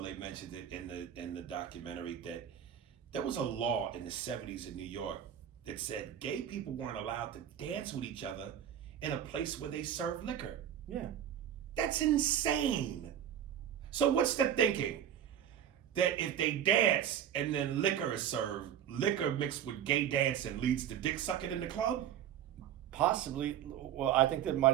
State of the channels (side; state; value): left; quieter; 9.9 dB